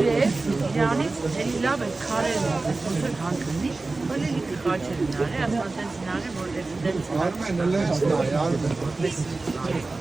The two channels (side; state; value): left; quieter; 3.5 dB